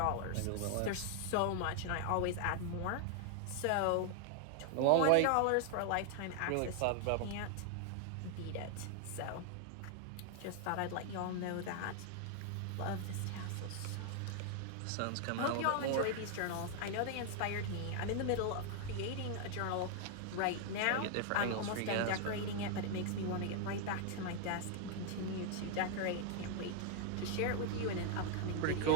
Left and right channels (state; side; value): different; both; correlation 0.00